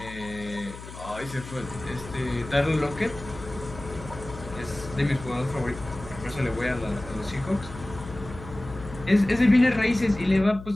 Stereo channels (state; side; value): noise; left; hum, 14 dB below the sound